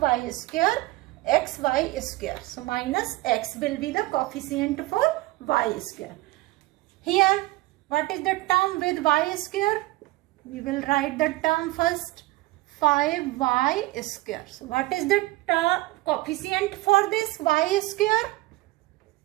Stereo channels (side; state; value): left; quieter; 19.4 dB